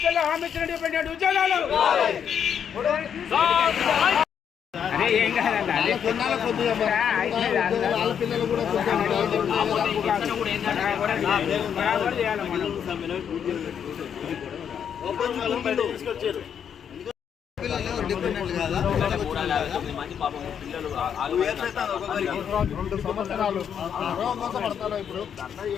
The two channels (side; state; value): right; quieter; 8.1 dB